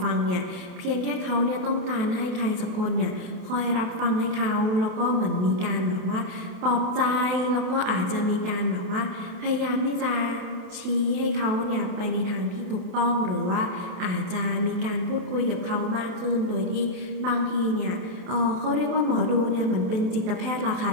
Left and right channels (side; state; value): left; late; 28 ms